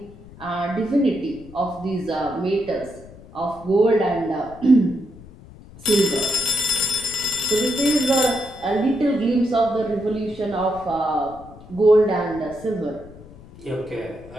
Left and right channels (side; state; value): left; noise; rumble, 20 dB below the sound